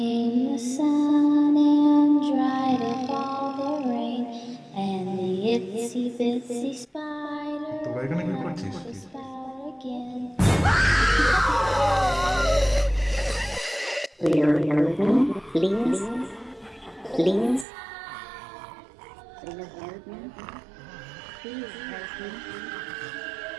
the sun and dried up all the rain. And the itsy bitsy spider তোরা এখানে কি went up করছিস? the spout again. Will you help me, please? Please? Will you help me? Please help me.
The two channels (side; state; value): left; drops out; at 17.7 s